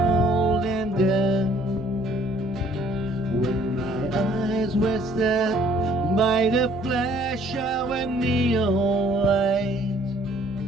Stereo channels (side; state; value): both; normal; correlation 0.59